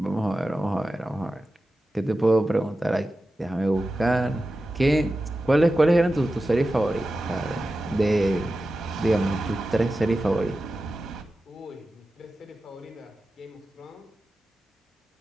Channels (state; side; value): normal; both; correlation 0.93